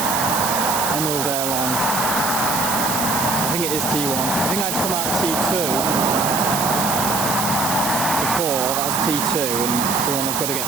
Airlines. I think it is T1. I think I've come out of T2. That's T2, and the one I've got to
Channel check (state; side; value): noise; right; hiss, 2 dB below the sound